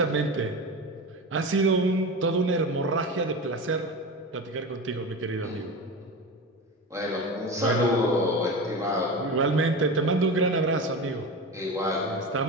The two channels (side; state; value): both; normal; correlation 0.26